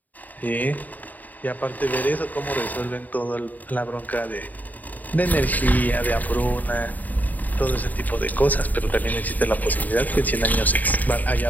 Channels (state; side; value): late; right; 0.081 ms